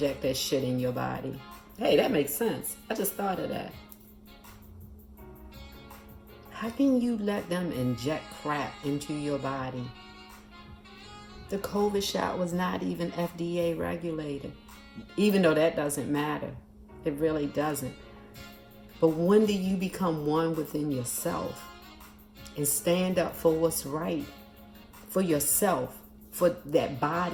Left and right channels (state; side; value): identical; both; correlation 1.00